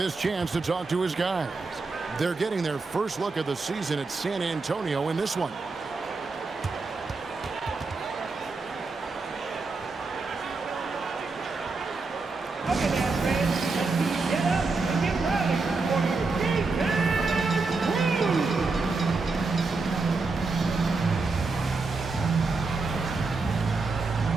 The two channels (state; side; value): quieter; left; 3.9 dB